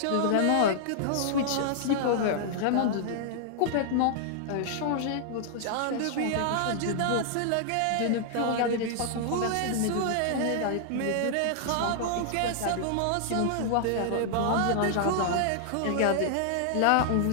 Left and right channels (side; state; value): both; different; correlation -0.01